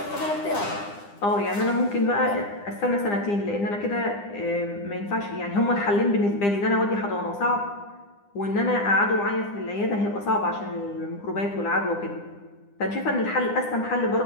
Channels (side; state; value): right; late; 9.9 ms